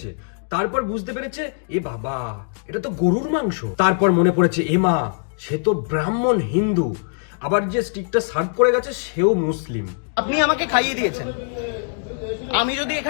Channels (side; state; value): right; silent; digital silence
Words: তারপর বুঝতে পেরেছে এ বাবা এটা তো গরুর মাংস। তারপর মনে পড়েছে এ মা সে তো ব্রাহ্মণ হিন্দু, আবার যে স্টিকটা সার্ভ করে গেছে সেও মুসলিম। আপনি আমাকে খাইয়ে দিয়েছেন। আমি যদি